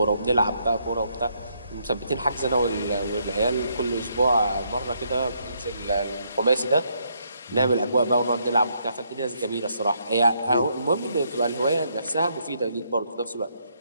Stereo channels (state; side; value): inverted; both; correlation -0.74